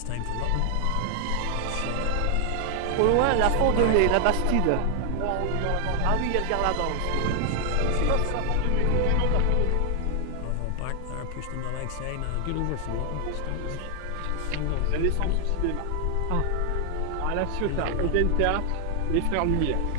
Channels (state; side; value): different; both; correlation 0.00